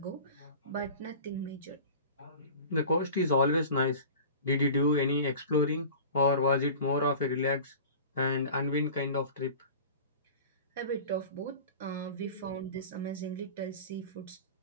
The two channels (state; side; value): inverted; both; correlation -0.38